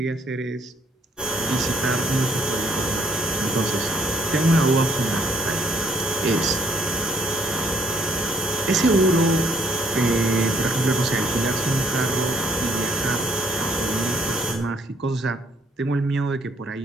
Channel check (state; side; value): normal; both; correlation 0.66